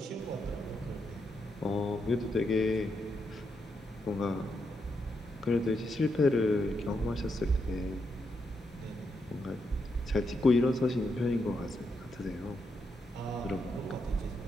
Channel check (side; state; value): both; normal; correlation 0.82